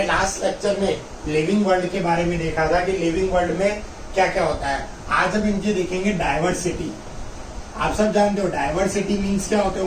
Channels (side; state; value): both; identical; correlation 1.00